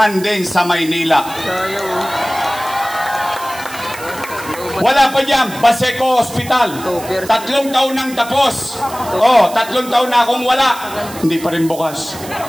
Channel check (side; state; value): right; noise; hiss, 15 dB below the sound